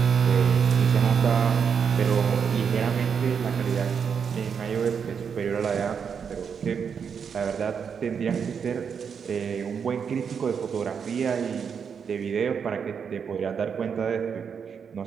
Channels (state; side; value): quieter; left; 6.8 dB